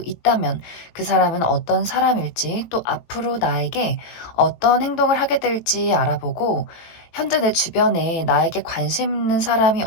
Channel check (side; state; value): right; late; 18 ms